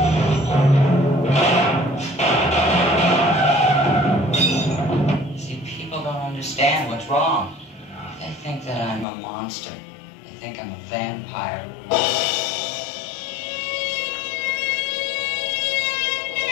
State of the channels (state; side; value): drops out; right; at 9.1 s